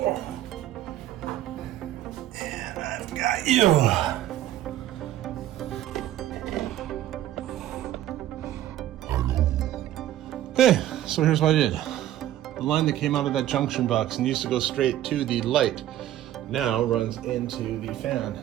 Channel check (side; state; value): left; quieter; 12.9 dB